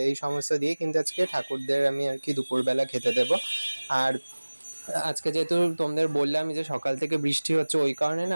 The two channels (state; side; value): inverted; both; correlation -1.00